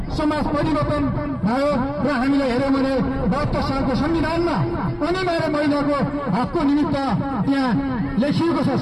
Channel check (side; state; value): both; identical; correlation 1.00